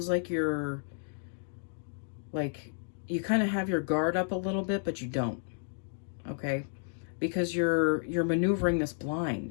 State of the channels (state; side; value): silent; right; digital silence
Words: like you're like you kind of have your guard up a little bit, but you don't. Okay? Because you're maneuvering this